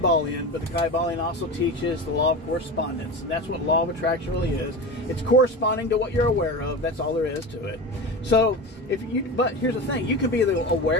but the Kybalion also teaches the law of correspondence. That's what law of attraction really is. It's corresponding to what you're aware of. That's all there is to it. So, but here's the thing. You can be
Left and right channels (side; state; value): both; normal; correlation 0.27